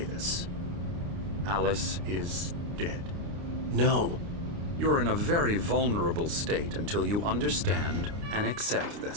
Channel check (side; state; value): left; late; 29 ms